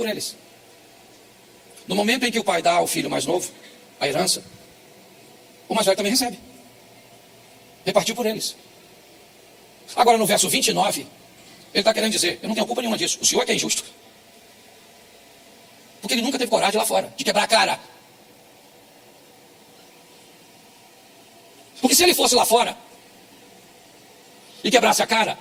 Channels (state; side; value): identical; both; correlation 1.00